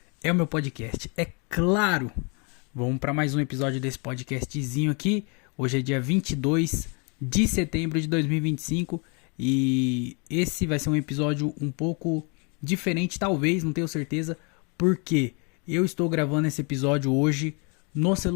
é o meu podcast. É claro! Vamos para mais um episódio desse podcastzinho aqui. Hoje é dia 22 de setembro de 2025 e esse vai ser um episódio um pouco diferente, talvez, não tenho certeza, porque eu estou gravando esse episódio hoje no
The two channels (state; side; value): quieter; right; 34.0 dB